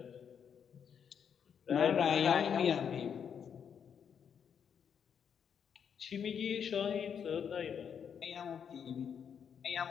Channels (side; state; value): right; quieter; 7.6 dB